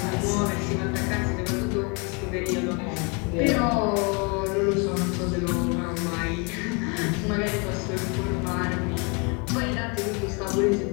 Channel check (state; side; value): quieter; right; 32.8 dB